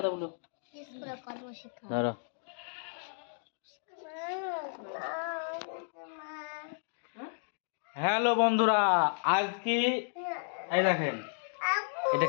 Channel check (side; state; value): right; silent; digital silence